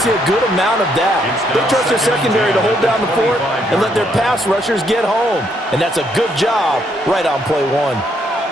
a good amount of that. They trust their secondary to hold down the fort and let their pass rushers get home. And that's a good job right on play one.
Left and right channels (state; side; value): normal; both; correlation 0.73